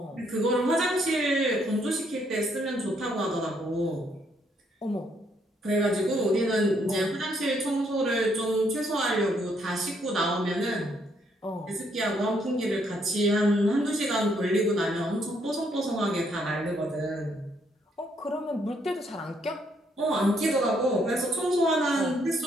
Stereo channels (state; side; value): normal; both; correlation 0.71